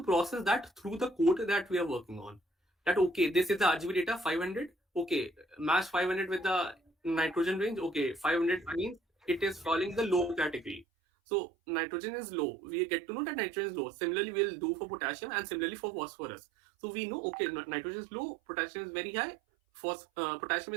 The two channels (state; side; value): drops out; left; at 10.9 s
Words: process that through the code that we are working on. That okay, this is the RGB data 500. Okay, match 500 with the nitrogen range. Okay, 500 means it is falling the low category. So nitrogen is low. We get to know that nitrogen is low. Similarly, we'll do for potassium and similarly for phosphorus. So we know okay, nitrogen is low, potassium is very high, potassium